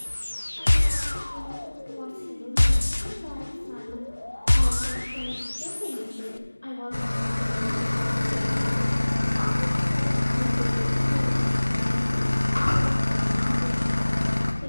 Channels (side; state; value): both; inverted; correlation -1.00